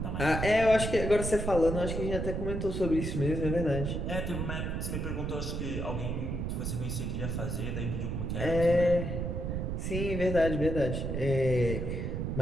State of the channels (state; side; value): noise; right; rumble, 2 dB below the sound